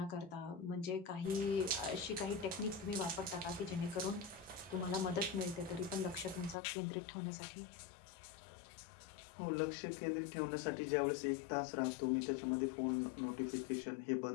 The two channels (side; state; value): right; drops out; at 6.6 s